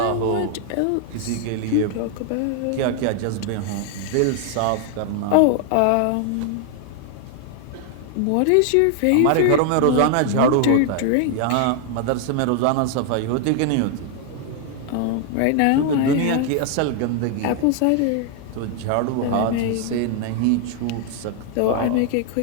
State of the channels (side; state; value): both; different; correlation 0.00